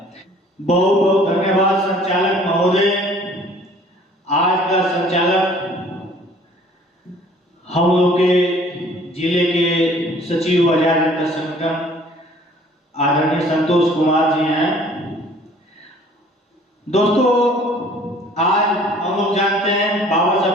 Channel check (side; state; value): both; normal; correlation 0.54